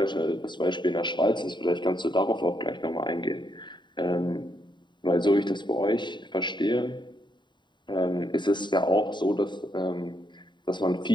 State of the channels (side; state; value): right; late; 0.22 ms